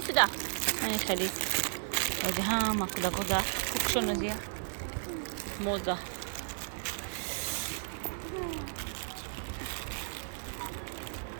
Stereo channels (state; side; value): silent; left; digital silence